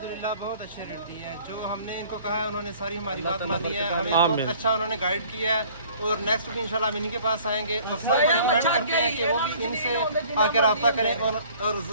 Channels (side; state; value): both; inverted; correlation -0.53